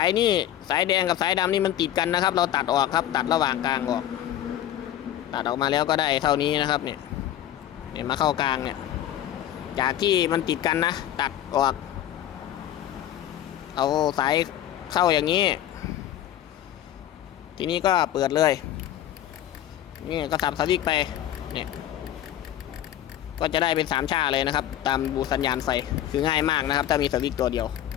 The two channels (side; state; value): right; quieter; 11.8 dB